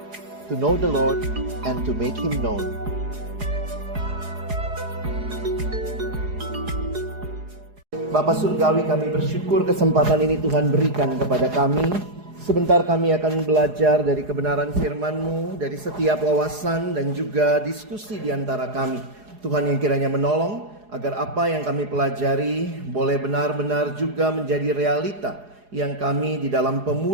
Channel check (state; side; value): late; left; 4.8 ms